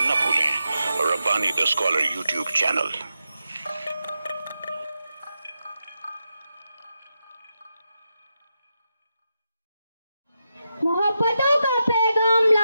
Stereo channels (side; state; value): both; inverted; correlation -0.88